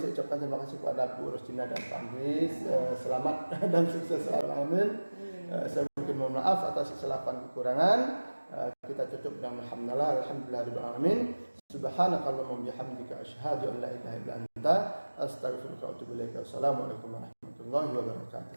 ucapkan terima kasih kepada Bu Rosina dan Pak Andri. Selamat dan sukses selalu. Amin. Saya mohon maaf atas kesilapan kekurangan. Kita tutup dengan alhamdulillahirabbil alamin. Subhanakallahumma bihamdika asyhadu an la ilaha illa anta astaghfiruka wa atubu ilaik. Assalamualaikum warahmatullahi wabarakatuh.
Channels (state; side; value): inverted; both; correlation -1.00